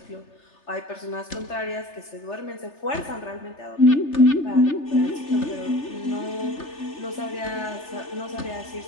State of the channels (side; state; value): right; late; 3.3 ms